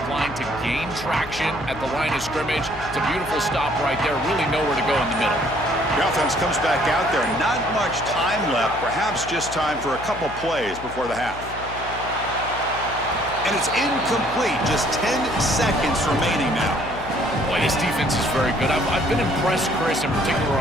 line to gain traction at the line of scrimmage. It's a beautiful stop right there. Really nowhere to go in the middle. The offense comes back out there. Not much time left. Perhaps just time for a couple plays before the half. And it's incomplete. Just 10 seconds remaining now. Boy, this defense is very good. I've been impressed, Chris, in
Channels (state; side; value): noise; left; hum, 13 dB below the sound